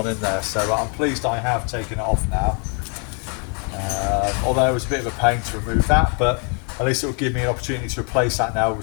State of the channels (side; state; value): right; quieter; 38.8 dB